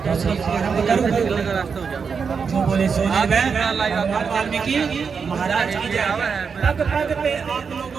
दूसरी आरंभ करूं। जो बोले सोने में वाल्मीकि महाराज की जय। पग पग पे आप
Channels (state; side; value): quieter; left; 5.8 dB